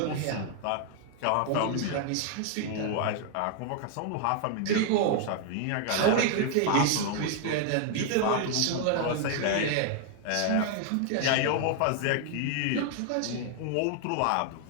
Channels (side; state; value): both; different; correlation 0.00